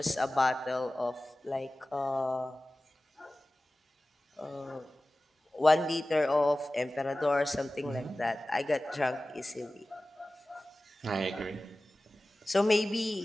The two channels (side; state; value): both; normal; correlation 0.97